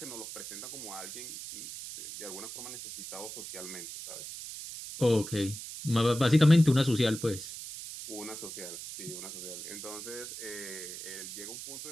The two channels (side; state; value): right; noise; hiss, 9 dB below the sound